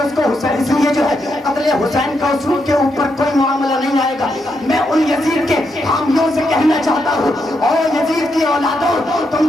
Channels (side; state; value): both; normal; correlation 0.81